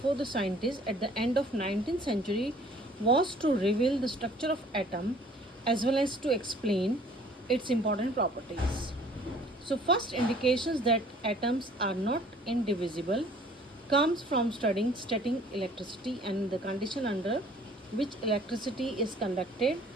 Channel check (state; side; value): normal; both; correlation 0.54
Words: the scientists at the end of 19th century was to reveal the structure of atom as well as to explain its important properties. So first indications that atoms are not indivisible comes from studying static electricity and the condition under which electricity is conducted